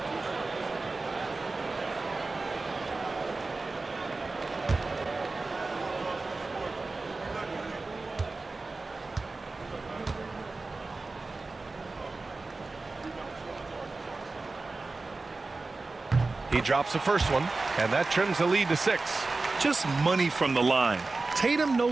He drops the first one, and that trims the lead to 6. Just money from the line. Tatum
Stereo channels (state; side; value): quieter; left; 3.6 dB